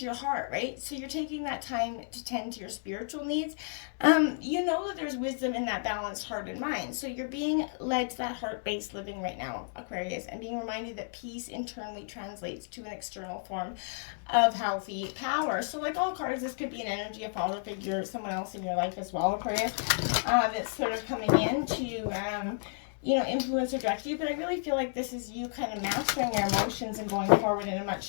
your heart, right? So you're taking that time to tend to your spiritual needs. You know that there's wisdom in that balanced heart and mind. So you're being led to that heart-based living right now, Aquarius, and being reminded that peace internally translates to an external form of healthy power. So like all cards, this could be an energy, a father figure, someone else in your life as well, Aquarius, that's sort of coming in to influence or direct you. But I really feel like this is you kind of mastering your emotions and going forward in a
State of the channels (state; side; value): silent; right; digital silence